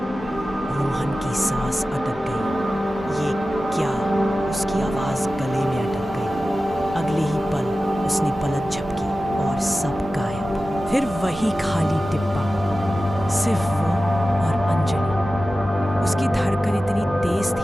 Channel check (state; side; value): normal; both; correlation 0.95